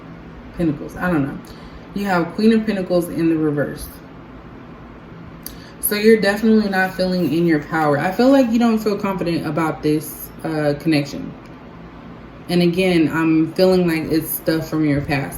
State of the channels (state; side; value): identical; both; correlation 1.00